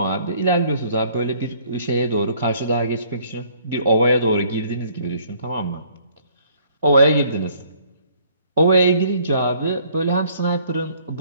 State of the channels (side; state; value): both; inverted; correlation -0.60